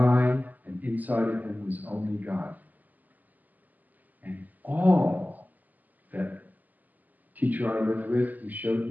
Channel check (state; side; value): late; left; 0.082 ms